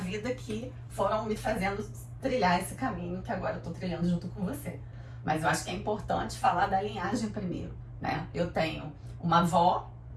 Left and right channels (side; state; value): both; identical; correlation 1.00